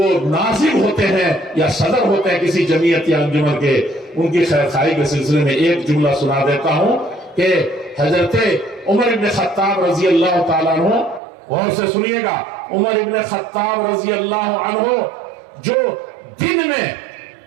ناظم ہوتے ہیں یا صدر ہوتے ہیں کسی جمعیت یا انجمن کے، ان کی خیر خواہی کے سلسلے میں ایک جملہ سنا دیتا ہوں کہ حضرت عمر ابن خطاب رضی اللہ تعالیٰ عنہ، غور سے سنیے گا، عمر ابن خطاب رضی اللہ عنہ جو دن میں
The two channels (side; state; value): left; drops out; at 11.2 s